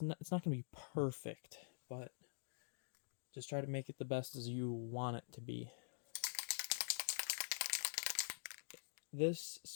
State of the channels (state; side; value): silent; right; digital silence